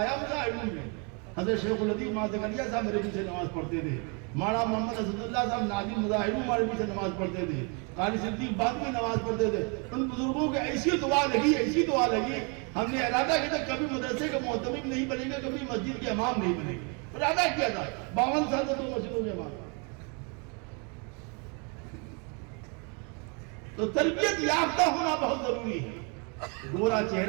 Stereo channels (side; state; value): left; quieter; 34.8 dB